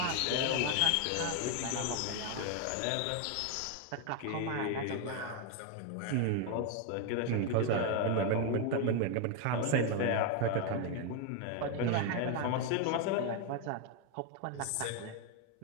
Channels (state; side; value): different; both; correlation 0.01